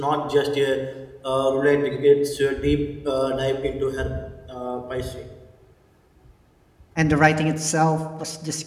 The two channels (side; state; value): both; identical; correlation 1.00